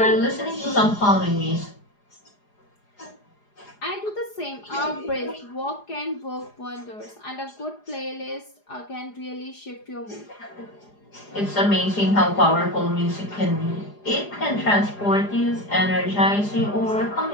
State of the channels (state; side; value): late; right; 4.9 ms